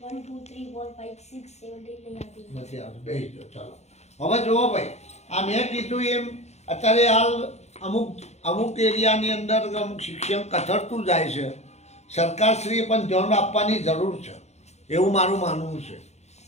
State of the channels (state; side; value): late; right; 0.32 ms